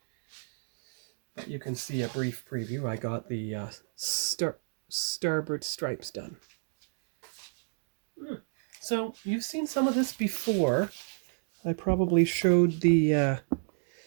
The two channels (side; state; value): left; silent; 57 dB below the other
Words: But you can see a brief preview. I got the starboard stripes done. So you've seen some of this before. I probably showed the